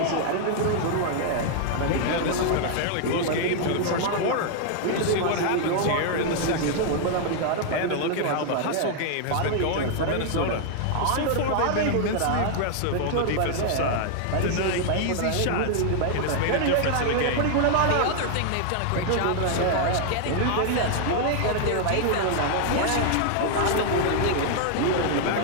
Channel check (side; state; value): both; different; correlation 0.00